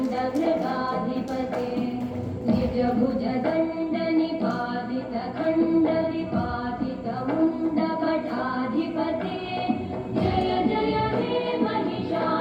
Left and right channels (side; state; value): both; identical; correlation 1.00